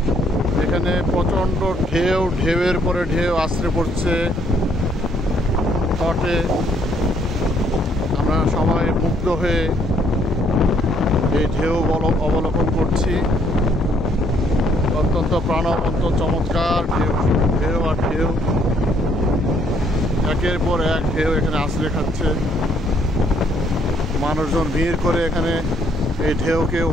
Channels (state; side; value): normal; both; correlation 0.68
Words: এখানে প্রচণ্ড ঢেউয়ের পরে ঢেউ আছড়ে পড়ছে তটে। আমরা সবাই মুগ্ধ হয়ে এই ঢেউ অবলোকন করছি। অত্যন্ত প্রাণবন্ত চমৎকার ঢেউ আর ঢেউ, একের পর এক ঢেউ এখানে আছড়ে খাচ্ছে। মানুষজন ভিড় করে এখানে এই ঢেউকে